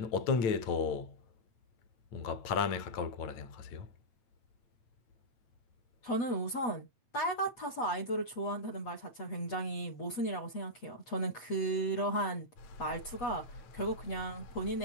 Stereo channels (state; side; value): late; right; 8.2 ms